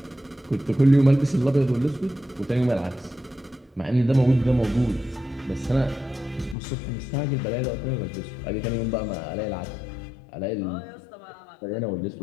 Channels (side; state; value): right; drops out; at 6.6 s